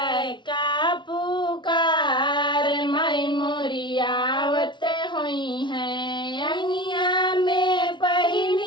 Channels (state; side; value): late; right; 0.23 ms